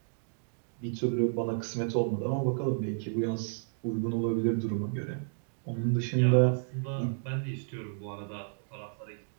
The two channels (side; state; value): left; silent; digital silence